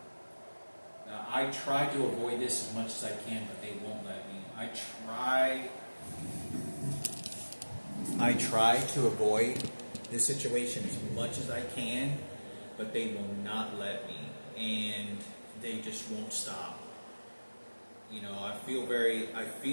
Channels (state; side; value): inverted; both; correlation -1.00